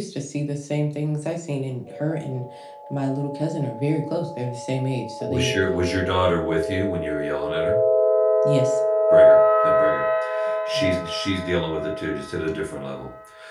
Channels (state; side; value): identical; both; correlation 1.00